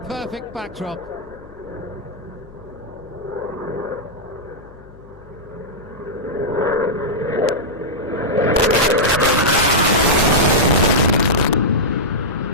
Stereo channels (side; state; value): left; noise; hum, 22 dB below the sound